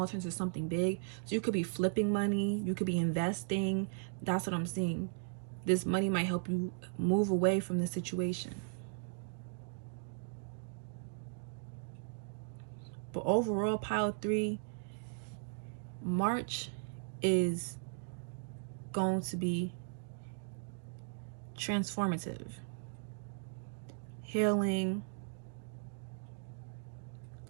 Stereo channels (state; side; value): silent; left; digital silence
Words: turns into something big. So you could be flipping money, you could be investing. That's what I'm seeing. This money might help you move away from the situation. But overall, pile 3, March is going to be transformative, healing,